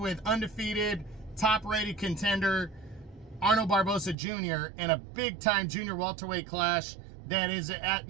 undefeated, top-rated contender Arnold Barboza Jr. in a big-time junior welterweight clash that is at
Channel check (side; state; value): left; drops out; at 4.2 s